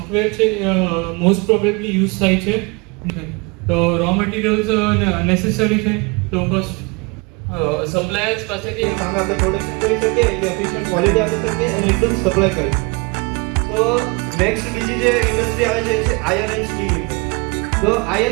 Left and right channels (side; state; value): left; quieter; 29.3 dB